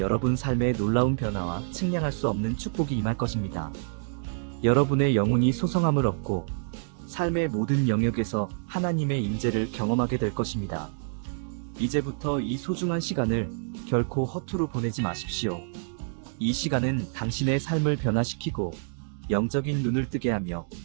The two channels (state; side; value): silent; left; digital silence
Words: 삶의 놀라운 변화와 측량할 수 없는 축복이 임할 것입니다. 여러분의 영혼이 소성함을 얻고 삶의 모든 영역에서 하나님의 임재를 경험하게 될 것입니다. 이제부터 이 소중한 시간을 결코 허투루 보내지 마십시오. 이 시간은 당신의 삶을 변화시키고 영적인 눈을 뜨게 하며